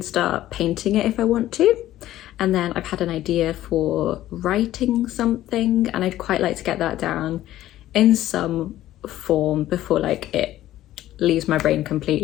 painting it if I want to. And then I've had an idea for writing something, and I'd quite like to get that down in some form before like it leaves my brain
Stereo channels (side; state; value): right; quieter; 14.0 dB